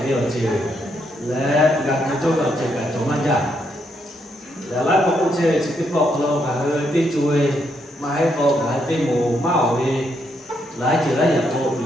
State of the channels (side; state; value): both; normal; correlation 0.77